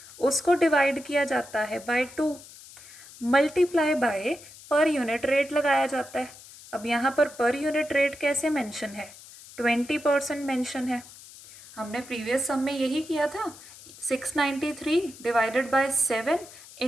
उसको डिवाइड किया जाता है by 2, multiply by per unit rate लगाया जाता है। अब यहाँ पर यूनिट रेट कैसे मेंशन है, 20% मेंशन है। हमने प्रीवियस सम में यही किया था, 693 डिवाइडेड बाय 7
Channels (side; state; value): left; noise; hiss, 19 dB below the sound